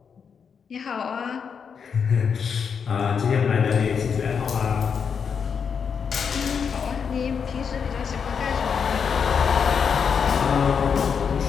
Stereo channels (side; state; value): right; quieter; 6.5 dB